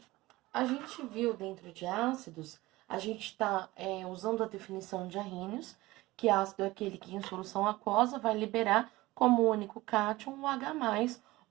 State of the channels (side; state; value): left; quieter; 19.2 dB